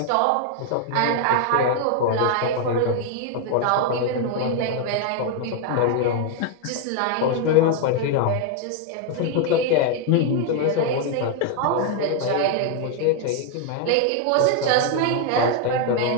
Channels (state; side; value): different; both; correlation 0.00